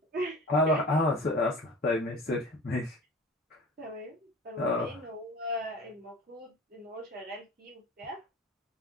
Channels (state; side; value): normal; both; correlation 0.39